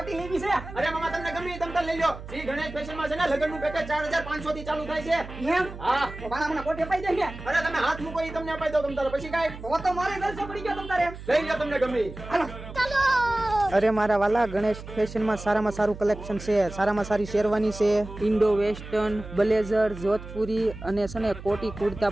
લેવી છે अरे मामा तुमने गमी तम ले लो श्री गणेश फैशन में છે ને લગન નું પેકેજ 4500 થી ચાલુ થાય છે એમ હા તો બાના મને કોટી અપાઈ દે ને અરે તમે હાથ મૂકો ઈ તમને અપાઈ દો તમ તારે પછી કાઈ તો તો મારે ગલસે પડી ગયો તમ તારે લઈ લો તમને ગમી હાલો અરે મારા વાલા ગણેશ ફેશનમાં સારામાં સારું કલેક્શન છે. સારામાં સારી શેરવાની છે, ઇન્ડો વેસ્ટર્ન, બ્લેઝર, જોધપુરી અને છે ને કોટી કુર્તા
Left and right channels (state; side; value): noise; right; hum, 13 dB below the sound